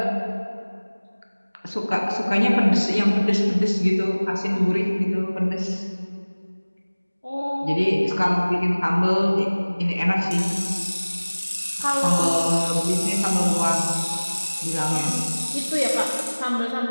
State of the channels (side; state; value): both; inverted; correlation -1.00